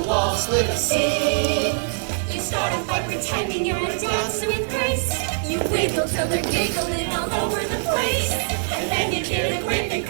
wall, split a seam. You start a fight pretending you're a dancer with grace. You wiggle till they're giggling all over the place. And then you get a whip and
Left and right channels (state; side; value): silent; left; 63 dB below the other